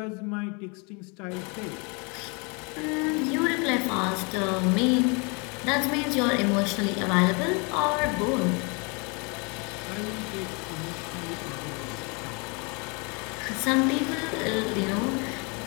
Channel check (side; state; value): right; quieter; 32.1 dB